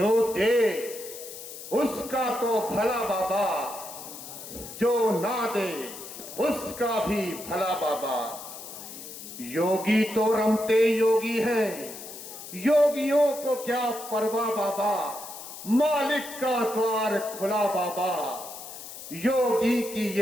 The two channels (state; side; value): noise; left; hiss, 12 dB below the sound